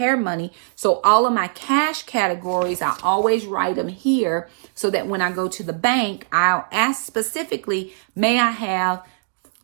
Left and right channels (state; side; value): silent; left; digital silence